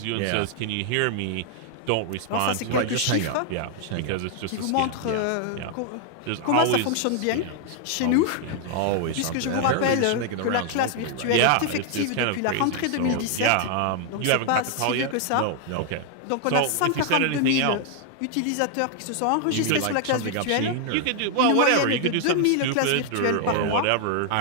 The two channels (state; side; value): different; both; correlation 0.00